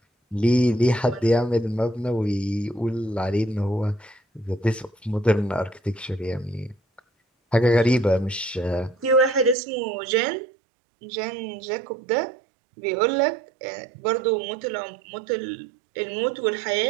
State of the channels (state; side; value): drops out; left; at 9.6 s